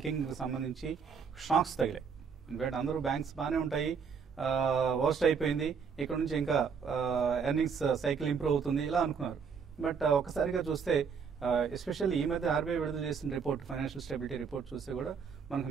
సంబంధించి షాక్స్ తగిలాయి. ఇన్ఫాక్ట్ అందరూ బ్యాంక్స్ బాగానే ఉంటాయి, వర్స్ట్ అయిపోయింది, ఇక్కడ నుంచి ఇంకా ఎర్నింగ్స్ సైకిల్ ఇంప్రూవ్ అవుతుంది ఇలా అనుకున్నారు. బట్ ఒకసారిగా చూస్తే ఎస్పెషల్లీ ఈ మధ్య ఆర్బీఐ విడుదల చేసిన రిపోర్ట్, ఫైనాన్షియల్ స్టెబిలిటీ రిపోర్ట్ చూస్తే కూడా మనకు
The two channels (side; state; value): left; quieter; 6.1 dB